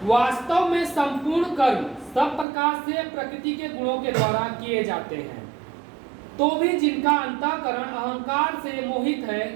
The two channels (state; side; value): drops out; left; at 2.5 s